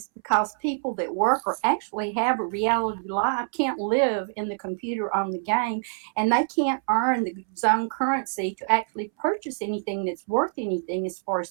because people that work or actually have a reality life can't live in the computer on the game, and they can't earn the zone currency to actually purchase anything that's worth anything as far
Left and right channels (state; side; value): silent; left; 61 dB below the other